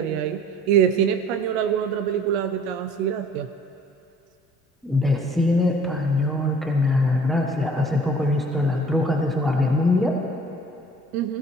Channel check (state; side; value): normal; both; correlation 0.51